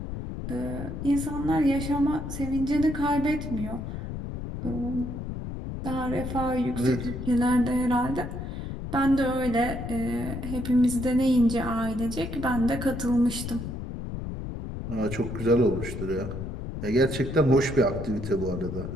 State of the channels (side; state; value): left; noise; rumble, 6 dB below the sound